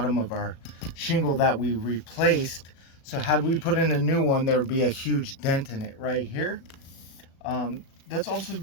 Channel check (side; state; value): right; late; 36 ms